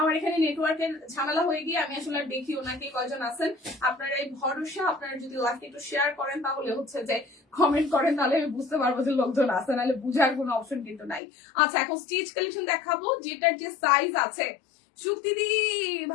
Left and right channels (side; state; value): right; drops out; at 11.2 s